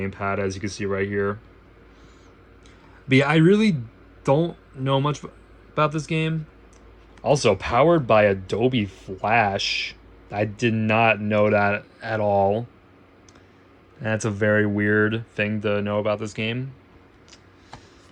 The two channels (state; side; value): identical; both; correlation 1.00